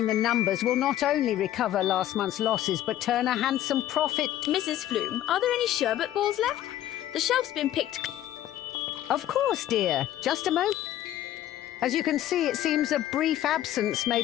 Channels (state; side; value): quieter; right; 12.8 dB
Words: the numbers will not only recover last month's losses, but turn a handsome profit. Mrs. Flume, are there any sherbet balls left? The shelf's been picked. Of course, dear. Just a moment. As you can see, it seems a brief absence